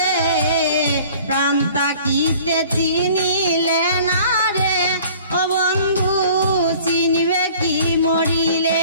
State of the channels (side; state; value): both; inverted; correlation -0.49